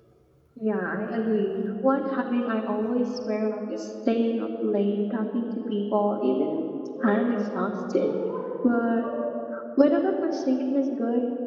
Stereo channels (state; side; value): identical; both; correlation 1.00